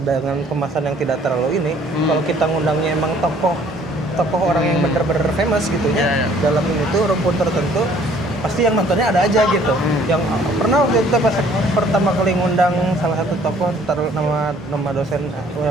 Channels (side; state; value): both; normal; correlation 0.58